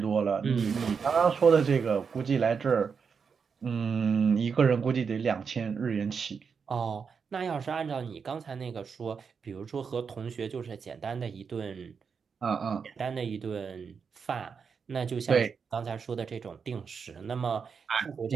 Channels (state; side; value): quieter; left; 6.0 dB